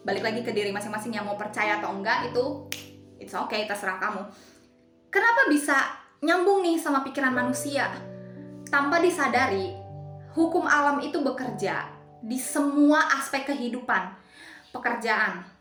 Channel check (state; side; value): identical; both; correlation 1.00